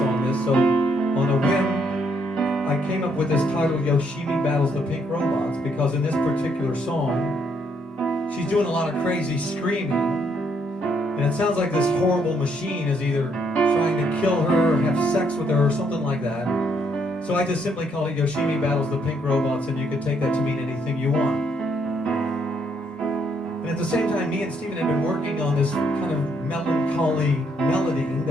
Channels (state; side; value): normal; both; correlation 0.72